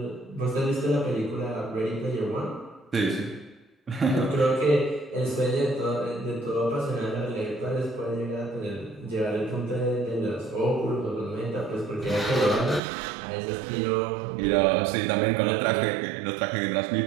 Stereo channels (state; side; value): drops out; left; at 12.8 s